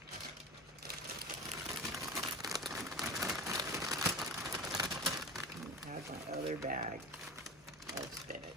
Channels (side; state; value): both; normal; correlation 0.30